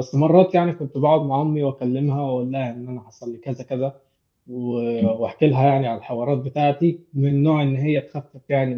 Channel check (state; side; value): identical; both; correlation 1.00